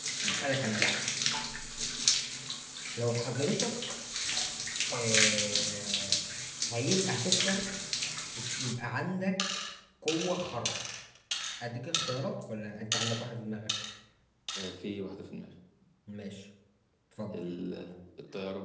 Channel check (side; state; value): both; identical; correlation 1.00